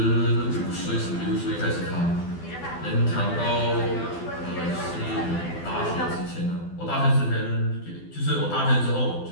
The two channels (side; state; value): right; late; 12 ms